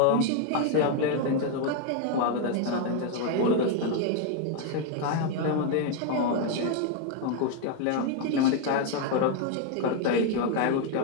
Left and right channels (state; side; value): different; both; correlation 0.01